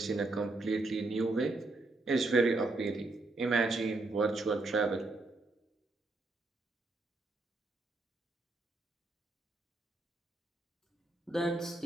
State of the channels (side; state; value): left; quieter; 3.1 dB